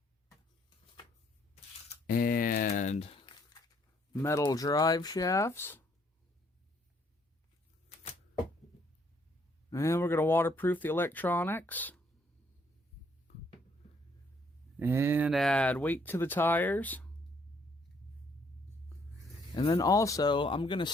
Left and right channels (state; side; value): normal; both; correlation 0.67